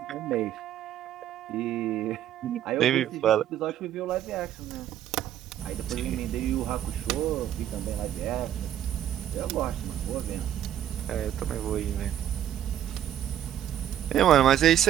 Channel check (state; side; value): quieter; left; 11.0 dB